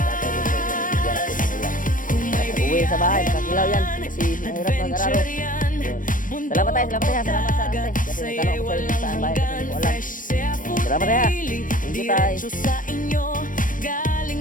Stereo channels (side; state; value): right; late; 0.39 ms